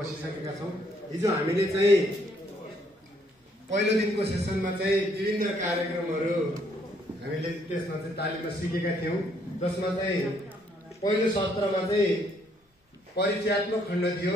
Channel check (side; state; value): both; normal; correlation 0.69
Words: छौँ। हिजो हामीले चाहिँ पहिलो दिनको सेसनमा चाहिँ विभिन्न कार्यक्रमहरू हामीले त्यसमा चाहिँ तालिममा सिकेका थियौँ, जसमा चाहिँ पहिलो सत्रमा चाहिँ परिचयात्मक खण्ड थियो।